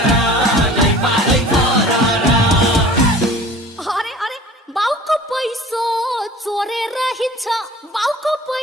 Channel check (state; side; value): normal; both; correlation 0.44